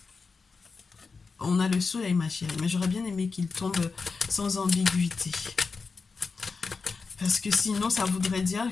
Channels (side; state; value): right; quieter; 4.7 dB